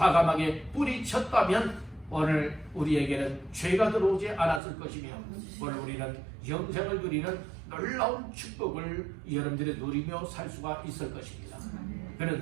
뿌리쳤다면 오늘 우리에게는 죄가 들어오지 않았을 것이며 오늘 우리는 영생을 누리는 놀라운 축복을 여러분들이 누리며 살 수가 있을 것입니다.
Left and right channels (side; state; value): left; drops out; at 4.6 s